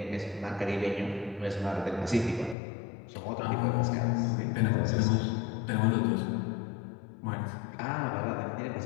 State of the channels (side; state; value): right; drops out; at 2.6 s